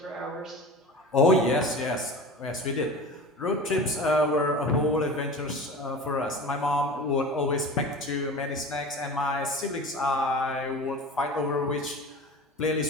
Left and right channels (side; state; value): both; normal; correlation 0.34